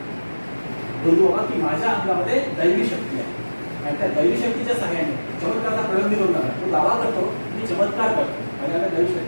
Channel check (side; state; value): both; inverted; correlation -1.00